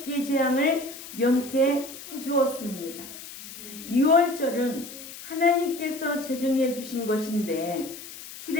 재앙을 면케해 주었습니다. 유월절은 하나님께서 제정해 주신 것인데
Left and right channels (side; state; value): left; noise; hiss, 13 dB below the sound